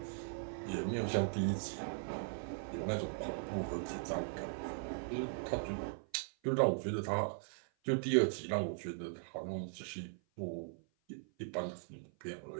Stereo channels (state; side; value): silent; left; 52 dB below the other